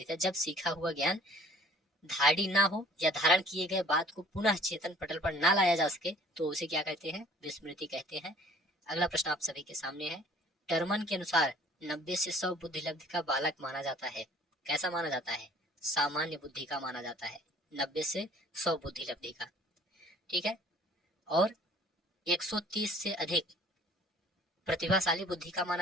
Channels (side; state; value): both; normal; correlation 0.54